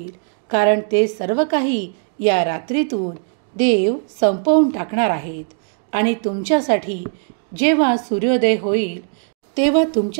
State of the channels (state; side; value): silent; left; 66 dB below the other